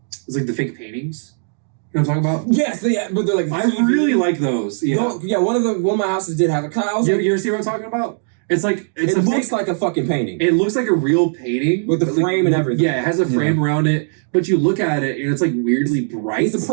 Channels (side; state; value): left; silent; digital silence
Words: it's like the fake paintings. You know what I'm talking about? Yes, yeah, but they're like I really like those. Yeah. No, yeah, one of my houses did have a kind of, You ever see what I'm talking about? It's like it looks like a fucking painting. it looks like a real painting With the but, like, frame and everything. Yeah, it has a frame around it, but you look at it and it's like weirdly bright. It's a